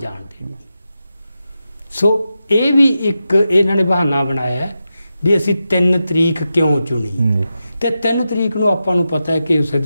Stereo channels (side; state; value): both; inverted; correlation -0.90